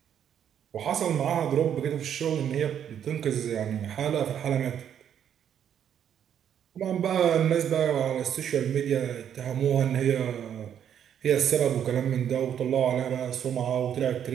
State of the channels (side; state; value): left; quieter; 9.2 dB